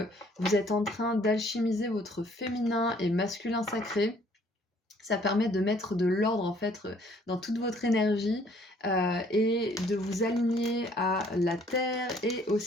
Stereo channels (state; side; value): normal; both; correlation 0.60